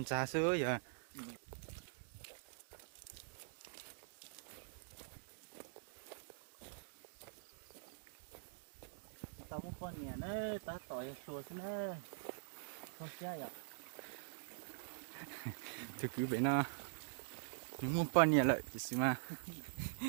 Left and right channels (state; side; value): silent; left; digital silence